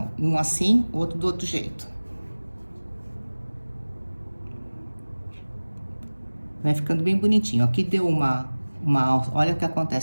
Um assim, outro do outro jeito. Vai ficando bem bonitinho. Aqui deu olha o que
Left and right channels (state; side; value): inverted; both; correlation -1.00